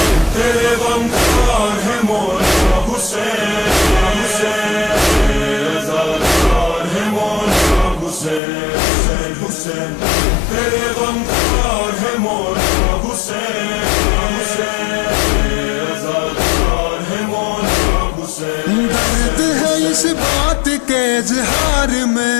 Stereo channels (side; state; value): right; drops out; at 8.4 s